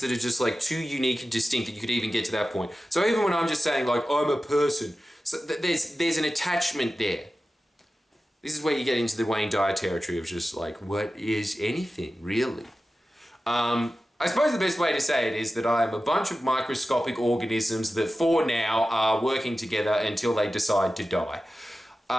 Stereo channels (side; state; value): both; normal; correlation 0.94